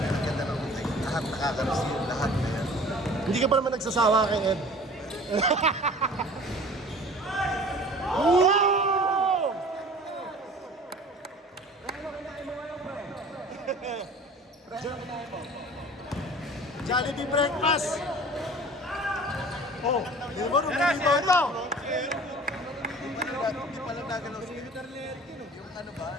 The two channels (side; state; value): both; normal; correlation 0.45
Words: ganda ng buhay. Lahat nakaka-receive, lahat na yan. Hindi ka pa naman nagsasawa kay Ed. Wow! Jollibee breakfast! Oh, di ba nung nilito ito? Hindi pa lang nagalaw si yung ano ba,